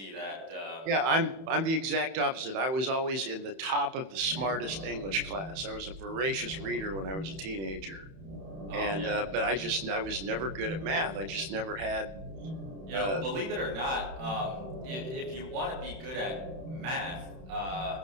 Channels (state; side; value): late; left; 31 ms